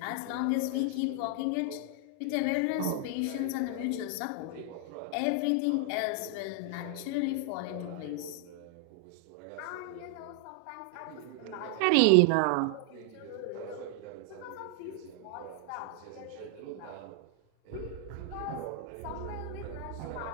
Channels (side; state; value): both; different; correlation 0.00